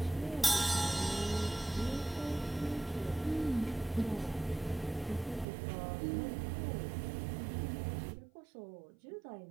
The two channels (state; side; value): drops out; left; at 5.5 s